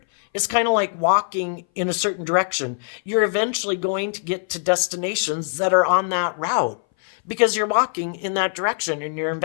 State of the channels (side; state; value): right; silent; 60 dB below the other